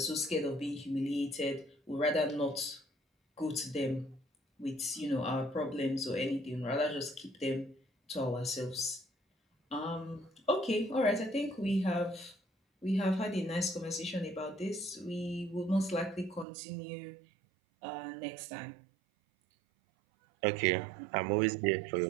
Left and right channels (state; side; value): drops out; left; at 16.4 s